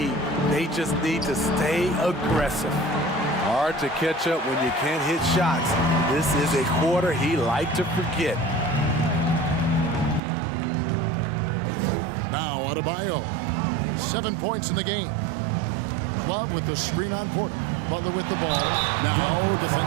They just need to stay aggressive. Hard to catch up when you can't hit shots. This is a quarter he liked to forget. Now Adebayo. 7 points in the game. Love with the screen on Porter. Butler with the ball. Now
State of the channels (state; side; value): drops out; left; at 10.2 s